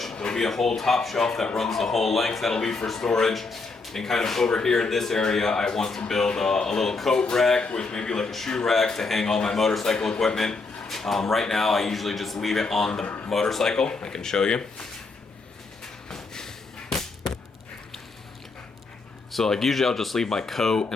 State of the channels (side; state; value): right; quieter; 3.9 dB